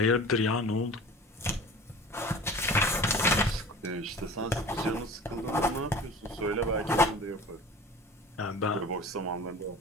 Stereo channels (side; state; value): both; normal; correlation 0.39